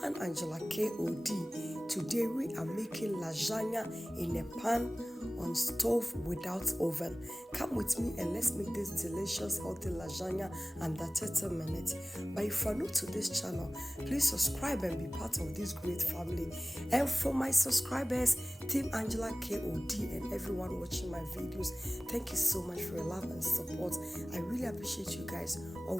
Angela KOD. Today we are making lasagna in a pan on stove without oven. Come with me and let's make this delicious healthy lasagna under 30 minutes. But if you are new to this channel, please subscribe and be part of this great family. And for my subscribers, Team Angela KOD and everyone watching my videos, thank you so much for your love and support. I really appreciate you guys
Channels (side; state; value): both; normal; correlation 0.98